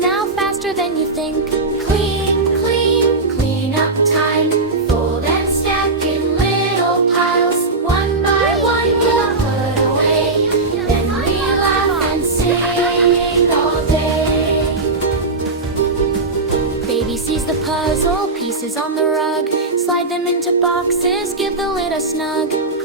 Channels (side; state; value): left; quieter; 3.5 dB